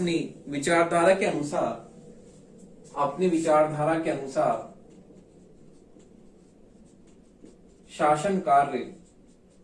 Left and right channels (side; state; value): both; identical; correlation 1.00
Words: विचारधारा के अनुसार, अपनी विचारधारा के अनुसार शासन कार्य